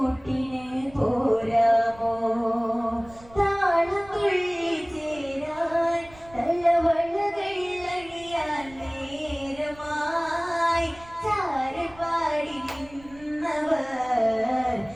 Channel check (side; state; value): right; noise; rumble, 23 dB below the sound